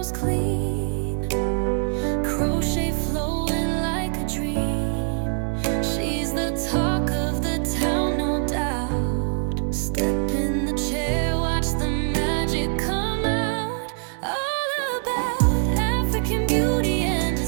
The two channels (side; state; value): left; silent; 59 dB below the other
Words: clean. Crochet flowing like a dream. She's the talk of the town, no doubt. Step in the chair, watch the magic come out. All about African beauty and